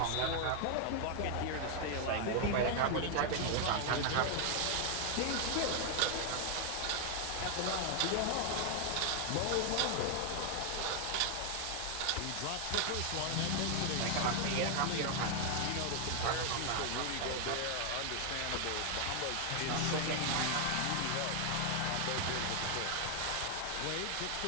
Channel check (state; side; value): different; both; correlation 0.00